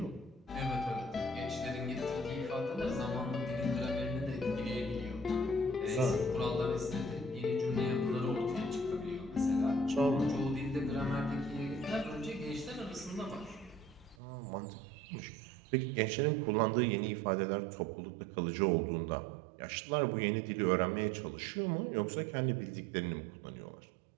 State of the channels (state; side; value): drops out; left; at 14.2 s